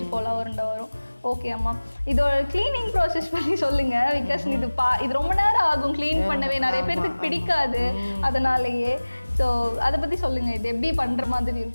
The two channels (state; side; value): inverted; both; correlation -1.00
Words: கோலா உருண்டை வரும். ஓகே அம்மா, இதோட க்ளீனிங் ப்ராசஸ் பற்றி சொல்லுங்கள். பிகாஸ் இது ரொம்ப நேரம் ஆகும் க்ளீன் பண்ணவே, நிறைய பேருக்கு பிடிக்காது, அதனாலேயே. ஸோ அதை பற்றி சொல்லுங்கள். இது எப்படி பண்ணுற மாதிரி